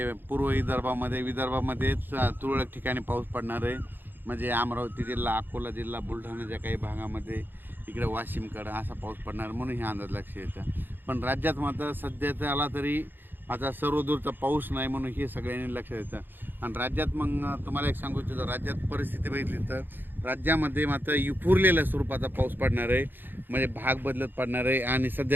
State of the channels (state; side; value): late; left; 0.095 ms